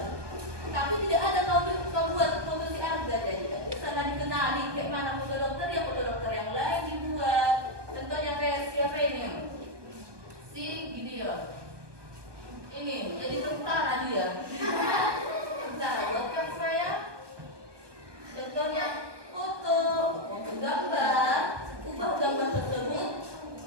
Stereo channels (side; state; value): left; late; 1.2 ms